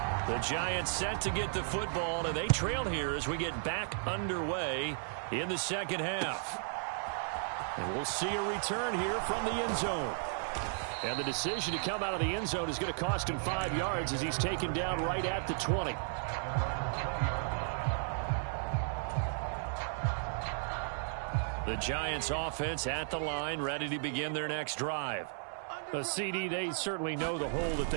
The Giants set to get the football, and they trail here as we get back underway in the second half. And we'll see a return here from the end zone. And the decision to come out of the end zone is going to cost him 5 yards as he's taken down right at the 20. The Giants offense at the line, ready to begin their next drive. CD, they certainly know the hole that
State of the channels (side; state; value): left; silent; 55 dB below the other